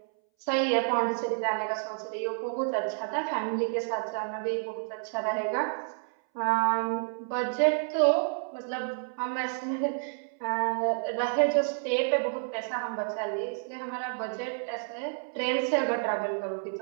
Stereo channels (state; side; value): silent; left; 58 dB below the other